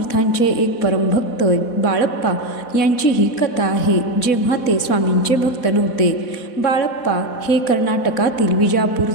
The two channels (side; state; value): right; late; 4.1 ms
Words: एक परमभक्त बाळप्पा यांची ही कथा आहे. जेव्हा ते स्वामींचे भक्त नव्हते. बाळप्पा हे कर्नाटकातील विजापूर